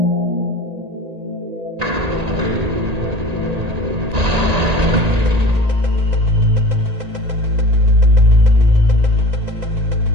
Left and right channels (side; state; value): left; late; 1.8 ms